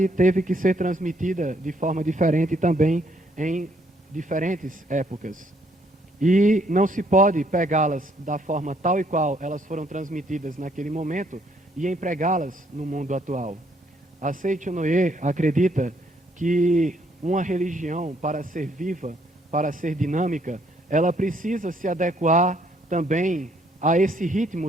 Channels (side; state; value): both; normal; correlation 0.68